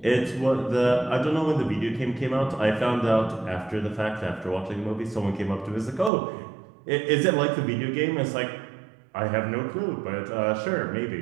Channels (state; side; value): drops out; left; at 6.1 s